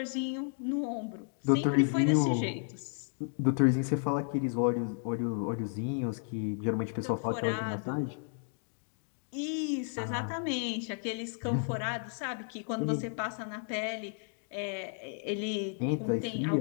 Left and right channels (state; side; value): silent; right; 56 dB below the other